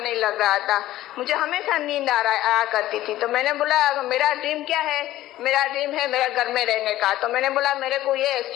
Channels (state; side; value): quieter; right; 14.7 dB